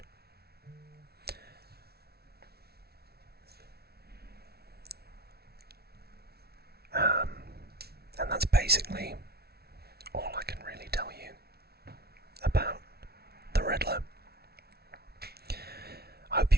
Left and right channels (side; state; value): left; late; 0.45 ms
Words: And that's basically all I can really tell you about the Riddler. I hope